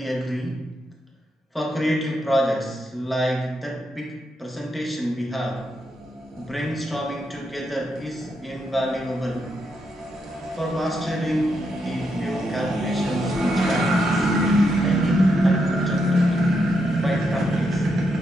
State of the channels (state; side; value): normal; both; correlation 0.81